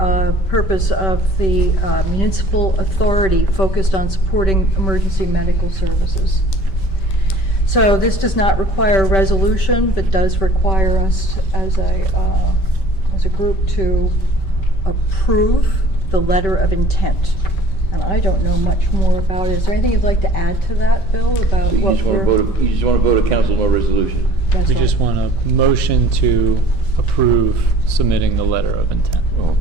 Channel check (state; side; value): late; right; 5.2 ms